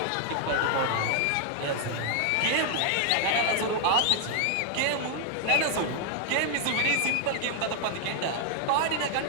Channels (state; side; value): different; both; correlation 0.00